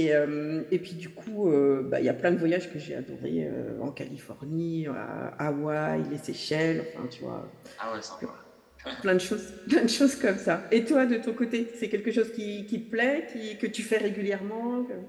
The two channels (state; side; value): identical; both; correlation 1.00